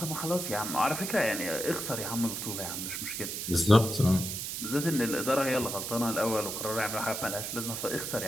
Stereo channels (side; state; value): right; noise; hiss, 4 dB below the sound